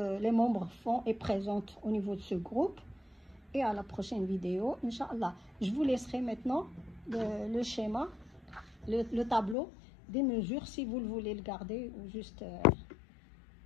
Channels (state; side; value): drops out; right; at 9.6 s